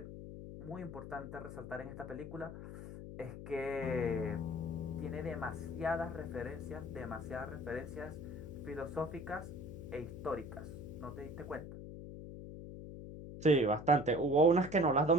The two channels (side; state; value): left; noise; hum, 10 dB below the sound